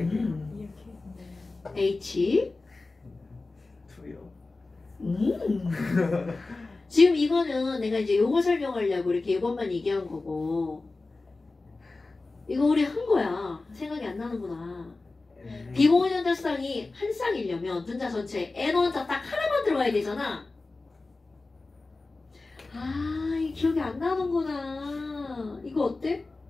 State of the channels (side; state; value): right; quieter; 3.5 dB